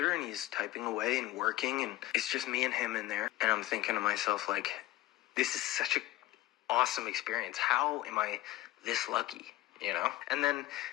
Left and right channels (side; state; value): right; quieter; 16.7 dB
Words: and he's typing away and working, and it's just me and him in there. And I'm thinking to myself, like, this is such an awesome experience. How am I this lucky, And